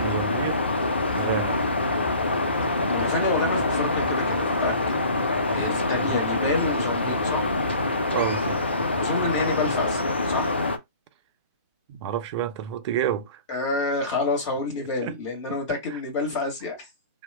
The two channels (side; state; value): both; inverted; correlation -0.44